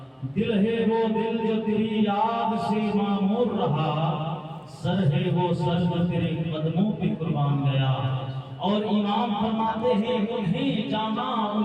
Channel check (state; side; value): identical; both; correlation 1.00